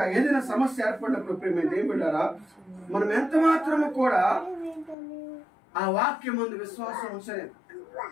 ఏదైనా సమస్య ఏర్పడినప్పుడు ప్రేమ దేవుడారా మనం ఎంత మాత్రము కూడా ఆ వాక్యం ముందు విశ్వాసం ఉంచలేదు.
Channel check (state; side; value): drops out; right; at 5.0 s